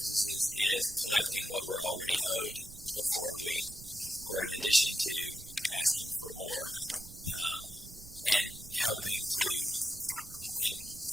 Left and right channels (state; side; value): noise; right; rumble, 16 dB below the sound